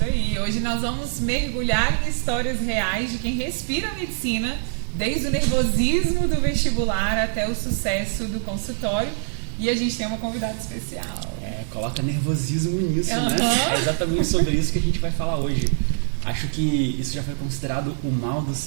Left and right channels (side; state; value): left; silent; digital silence